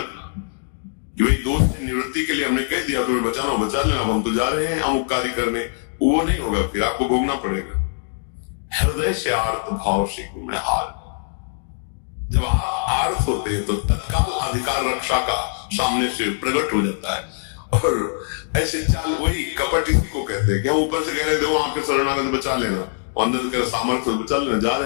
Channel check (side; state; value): right; silent; digital silence